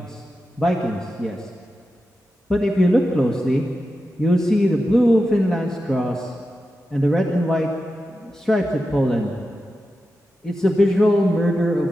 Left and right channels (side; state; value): both; normal; correlation 0.91